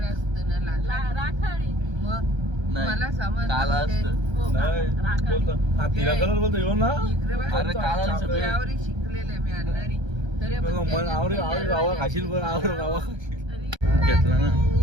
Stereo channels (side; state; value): left; late; 1.3 ms